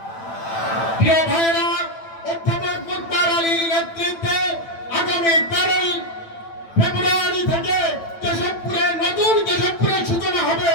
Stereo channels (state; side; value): late; right; 9.0 ms